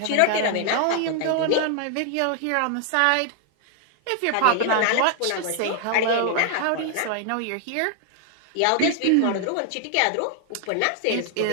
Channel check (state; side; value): different; both; correlation 0.00